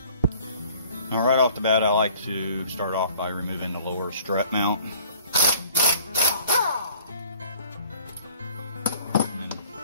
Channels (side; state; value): both; inverted; correlation -0.53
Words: Now right off the bat, I like to start off by removing the lower strut mount. And